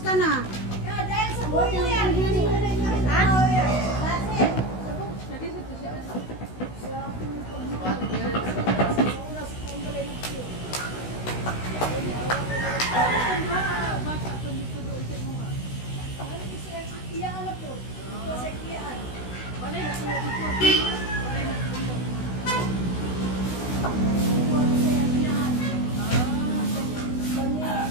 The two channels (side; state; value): right; late; 16 ms